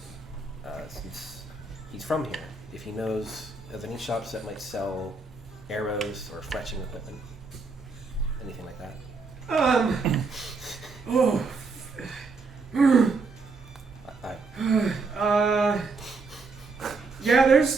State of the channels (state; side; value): quieter; left; 4.1 dB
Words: since he's from here, if he knows of any shops that might sell arrows or fletching equipment. Anything like that. Yeah,